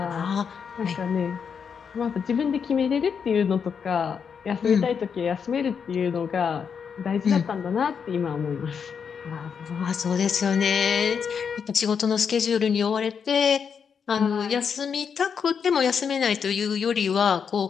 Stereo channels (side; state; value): right; quieter; 6.7 dB